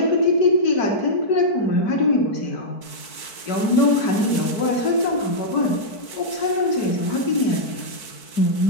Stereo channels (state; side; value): late; right; 4.6 ms